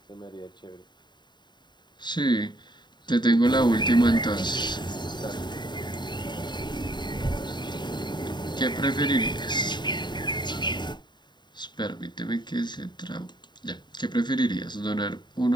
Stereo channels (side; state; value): right; late; 0.21 ms